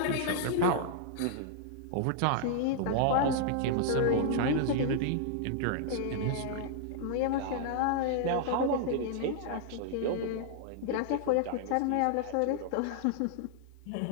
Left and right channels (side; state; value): both; different; correlation -0.01